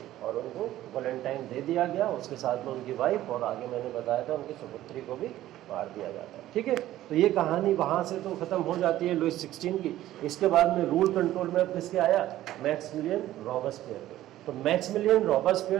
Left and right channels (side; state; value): left; quieter; 14.2 dB